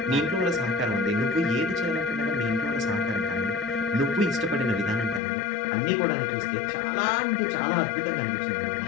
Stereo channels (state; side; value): drops out; right; at 5.2 s